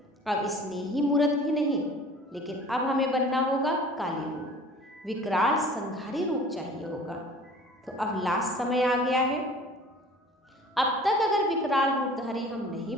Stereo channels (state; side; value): normal; both; correlation 0.46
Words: अब स्नेही मूर्त भी नहीं, लेकिन अब हमें बनना होगा काली रूप, विकराल संघारी रूप चाहिए होगा। तो अब लास्ट समय आ गया है। अब तक अगर विकराल रूपधारी हम नहीं